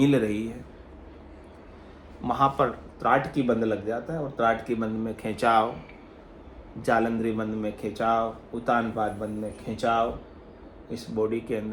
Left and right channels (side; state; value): both; identical; correlation 1.00